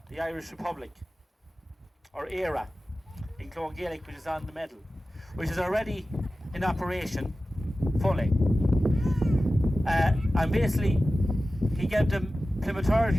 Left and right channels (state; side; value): normal; both; correlation 0.95